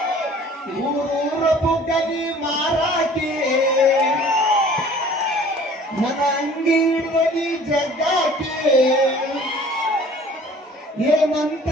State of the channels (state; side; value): normal; both; correlation 0.50